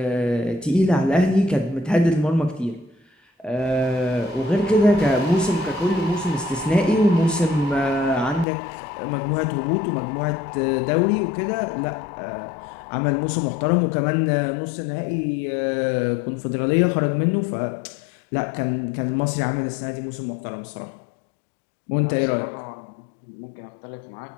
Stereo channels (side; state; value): right; drops out; at 8.5 s